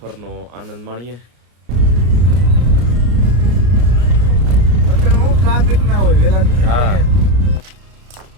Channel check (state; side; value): late; left; 33 ms